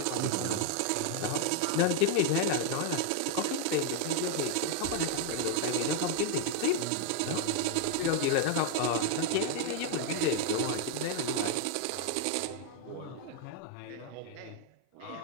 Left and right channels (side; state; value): both; different; correlation 0.01